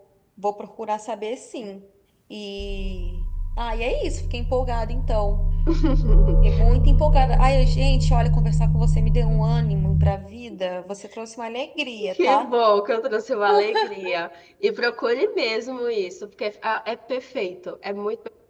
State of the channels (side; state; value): both; identical; correlation 1.00